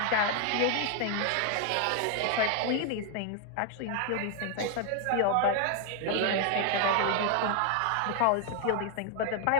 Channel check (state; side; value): different; both; correlation 0.00